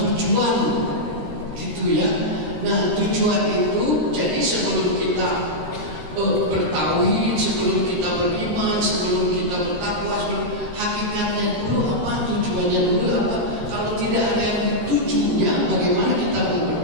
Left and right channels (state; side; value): late; left; 13 ms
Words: tujuan, gitu ya. Nah, tujuan itu jadi sebelum kita bertauhid, sebelum kita beriman, sebelum kita bertakwa, hakikatnya dulu apa, tujuannya dulu apa. Kalau tidak ada yang ditujunya, bagaimana kita mau